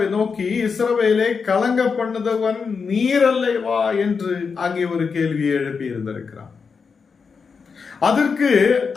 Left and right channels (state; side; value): quieter; right; 5.5 dB